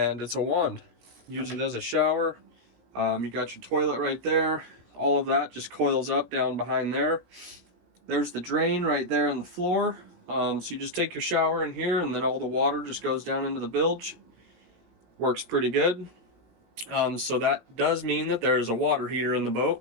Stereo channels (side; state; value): left; late; 17 ms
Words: it's a wand. Use it as a shower. You got your toilet right there. All of that just coils up down behind there. There's the drain right there on the floor. So you just take your shower in here and then all the water just goes down into the bilge. Works pretty good. So that does mean that there's a water heater in the boat.